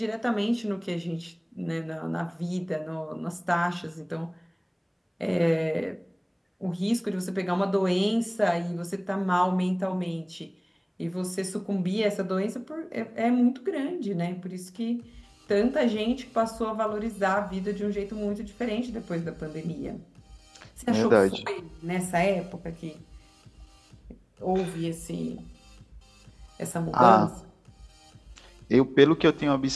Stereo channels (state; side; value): identical; both; correlation 1.00